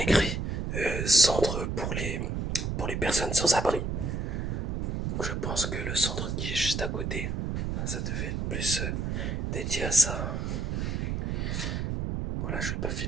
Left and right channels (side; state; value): right; noise; rumble, 1 dB below the sound